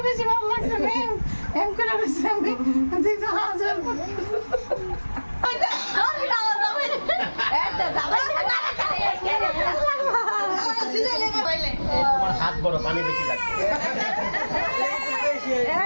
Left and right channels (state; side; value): inverted; both; correlation -1.00